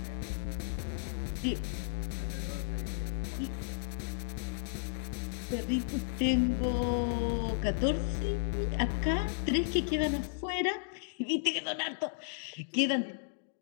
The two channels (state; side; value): silent; right; digital silence